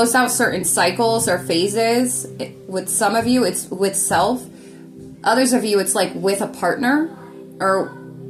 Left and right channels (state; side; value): identical; both; correlation 1.00